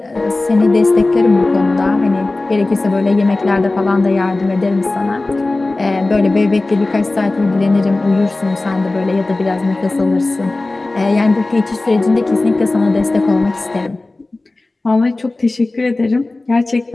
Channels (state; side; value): quieter; right; 3.1 dB